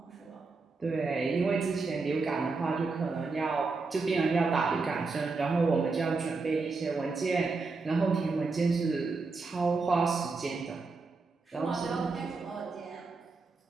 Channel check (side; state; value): left; quieter; 4.1 dB